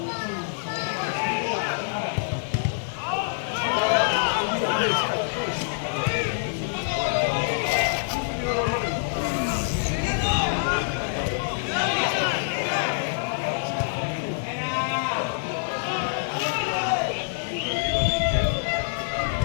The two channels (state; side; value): silent; right; digital silence